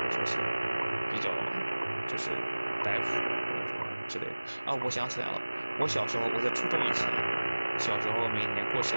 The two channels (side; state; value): both; inverted; correlation -1.00